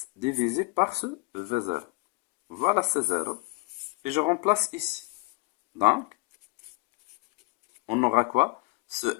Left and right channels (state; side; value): quieter; right; 25.4 dB